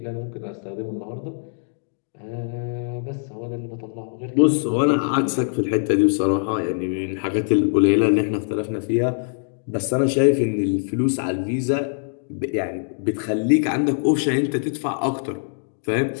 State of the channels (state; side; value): silent; right; digital silence